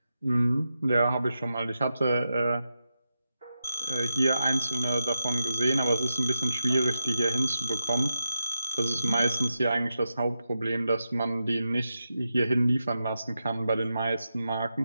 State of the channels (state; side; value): inverted; both; correlation -0.88